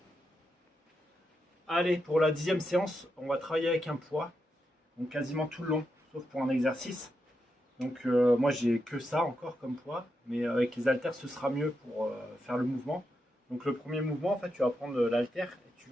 Allez, pour la 10e séance, on va travailler avec un poids, donc quasiment tout le long, sauf pour un exercice. Donc moi j'ai que ça encore comme poids, mais avec les haltères ce sera mieux pour faire le mouvement. Donc le premier mouvement, en fait, tu vas prendre l'haltère et tu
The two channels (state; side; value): normal; both; correlation 0.85